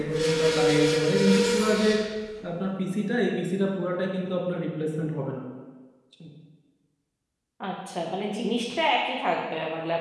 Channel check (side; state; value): both; identical; correlation 1.00